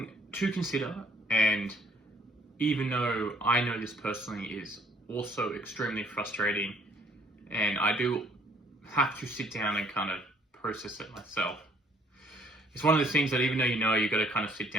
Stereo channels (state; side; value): normal; both; correlation 0.60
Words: to consider, and even though I know this personally is also extremely frustrating, and I do have to sit down and kind of process it myself. It's one of those things that even though you've got to kind of sit